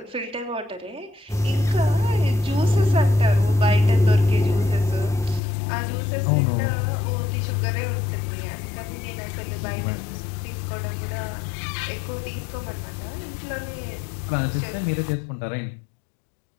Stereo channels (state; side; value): drops out; right; at 5.4 s